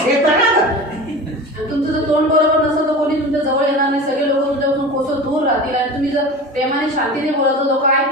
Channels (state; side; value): normal; both; correlation 0.32